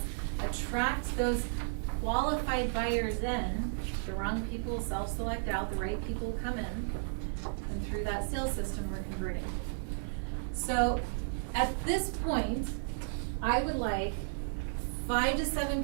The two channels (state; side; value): silent; left; digital silence